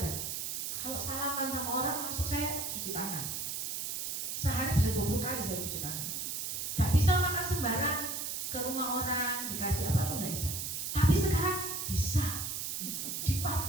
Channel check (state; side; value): noise; right; hiss, 3 dB below the sound